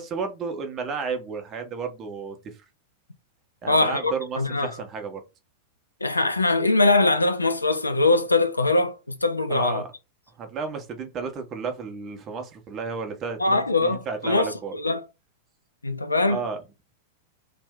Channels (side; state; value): both; inverted; correlation -0.63